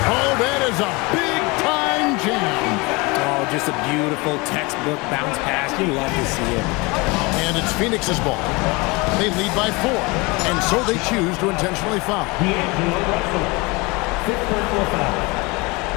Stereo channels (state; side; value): quieter; right; 25.7 dB